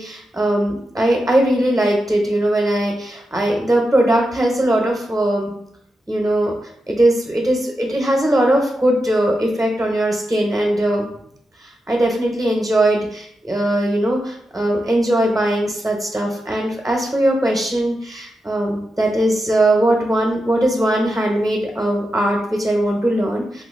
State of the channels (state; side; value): normal; both; correlation 0.88